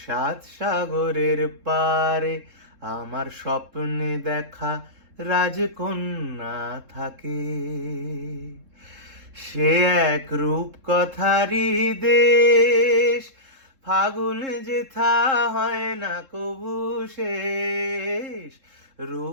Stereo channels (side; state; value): left; late; 3.7 ms